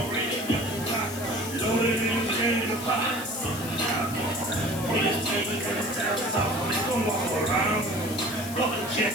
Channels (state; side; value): noise; left; hiss, 11 dB below the sound